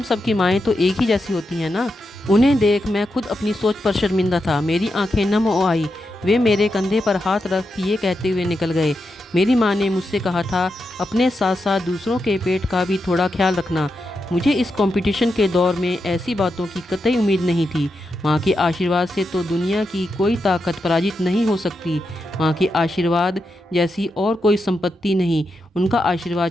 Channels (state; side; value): normal; both; correlation 0.86